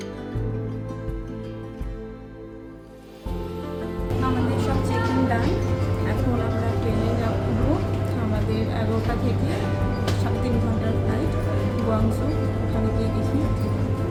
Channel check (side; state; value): both; identical; correlation 1.00